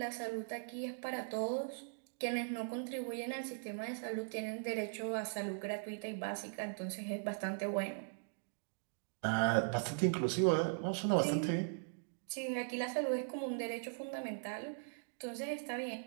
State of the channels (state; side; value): silent; left; digital silence